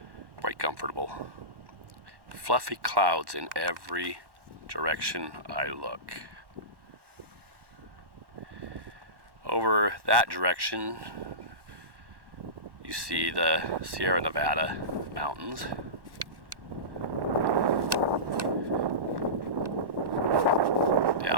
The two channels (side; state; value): left; late; 1.1 ms